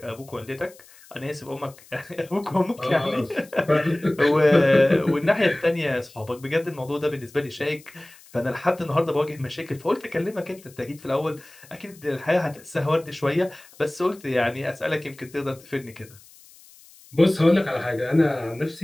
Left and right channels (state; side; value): noise; left; hiss, 24 dB below the sound